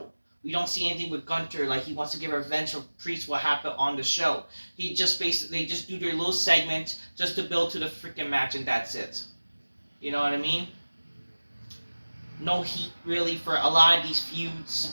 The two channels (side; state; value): both; inverted; correlation -1.00